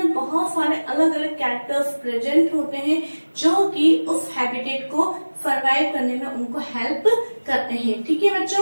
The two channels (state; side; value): inverted; both; correlation -1.00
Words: बहुत सारे अलग अलग कैरेक्टर्स प्रेजेंट होते हैं जो कि उस हैबिटेट को सर्वाइव करने में उनको हेल्प करते हैं। ठीक है